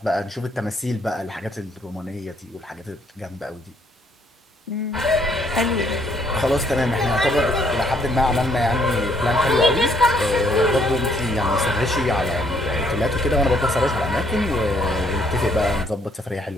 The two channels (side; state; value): both; normal; correlation 0.67